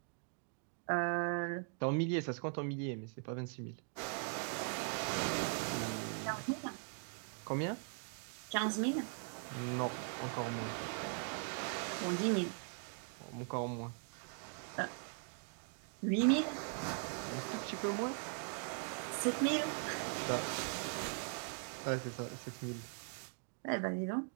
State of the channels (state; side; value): silent; left; 51 dB below the other